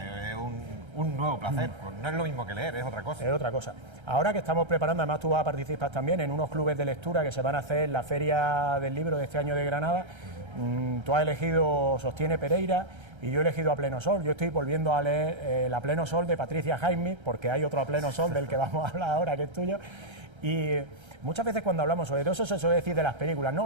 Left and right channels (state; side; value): late; left; 1.3 ms